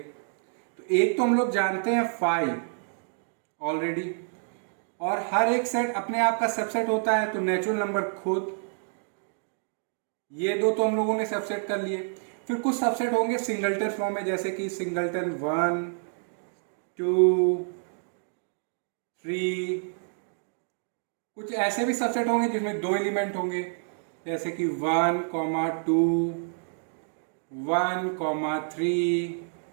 एक तो हम लोग जानते हैं 5 ऑलरेडी, और हर एक सेट अपने आप का सबसेट होता है, तो नेचुरल नंबर खुद, ये दो तो हम लोगों ने सबसेट कर लिए। फिर कुछ सबसेट होंगे सिंगलटन फॉर्म में, जैसे कि सिंगलटन 1 2 3। कुछ ऐसे भी सबसेट होंगे जिसमें 2 एलिमेंट होंगे, जैसे कि 1 2 1 3।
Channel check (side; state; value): left; silent; digital silence